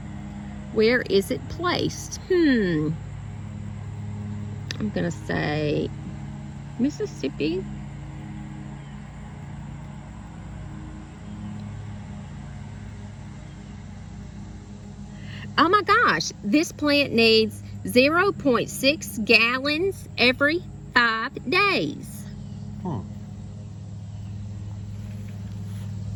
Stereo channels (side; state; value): both; identical; correlation 1.00